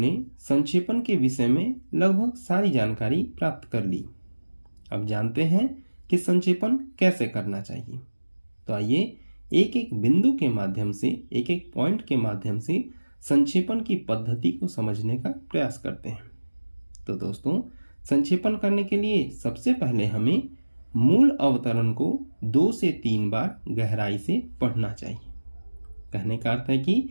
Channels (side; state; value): both; inverted; correlation -1.00